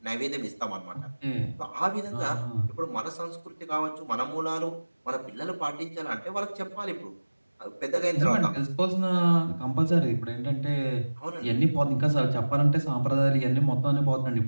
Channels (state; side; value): inverted; both; correlation -1.00